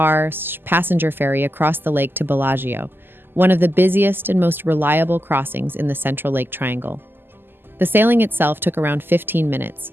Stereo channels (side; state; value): left; late; 0.098 ms